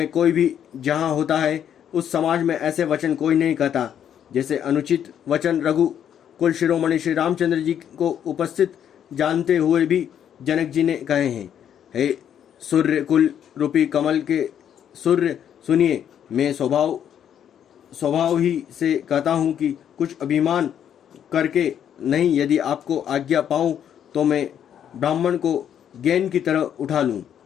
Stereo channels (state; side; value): quieter; right; 9.4 dB